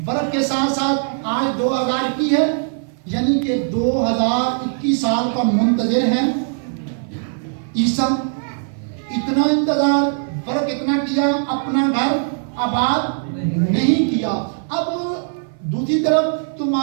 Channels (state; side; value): silent; left; 56 dB below the other